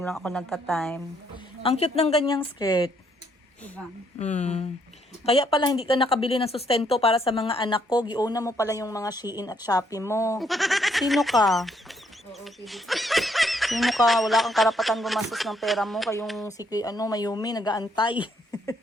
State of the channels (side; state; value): both; normal; correlation 0.70